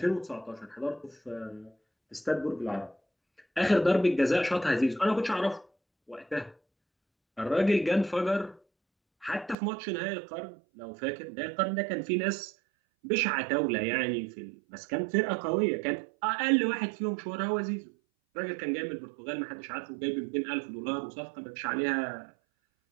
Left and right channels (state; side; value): drops out; left; at 9.6 s